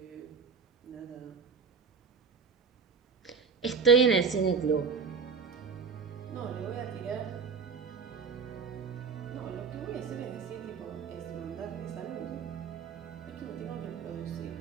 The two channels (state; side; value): quieter; left; 5.5 dB